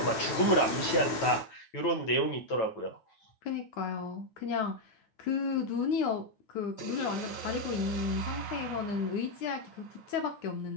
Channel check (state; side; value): late; right; 9.1 ms